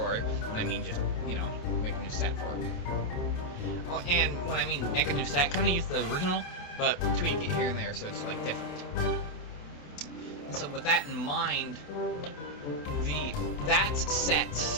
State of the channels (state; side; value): late; right; 28 ms